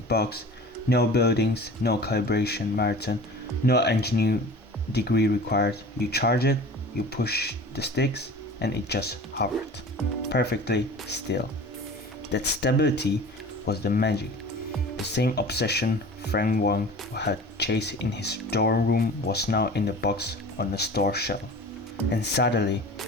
box, no buildings, no calibration marathon, no engineering degree required. You charge it, you push the sticks, and it just hovered, perfectly still. That stability was the magic. The same obsession Frank Wang had chased in his dorm room was now in the box on the store shelf. And suddenly,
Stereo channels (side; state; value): both; normal; correlation 0.40